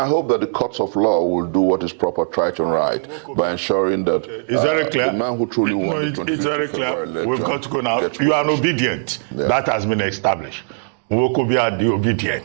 hope that the courts of law will do what is proper, right and right, by ensuring that It's very clear. the man who truly won the 25th it's very clear. February We've got to go now. gets You are released. obedient. Yeah. That has been established. Wokobia the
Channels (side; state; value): left; silent; digital silence